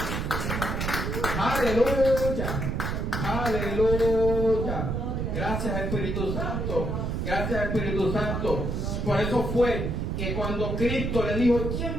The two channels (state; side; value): noise; right; rumble, 1 dB below the sound